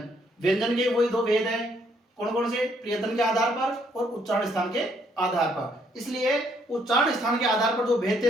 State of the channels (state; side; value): normal; both; correlation 0.69